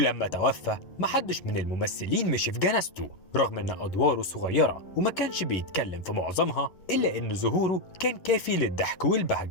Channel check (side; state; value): right; late; 11 ms